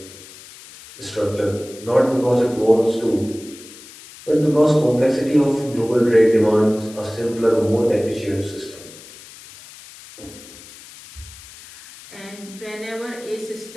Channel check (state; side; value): noise; left; hiss, 18 dB below the sound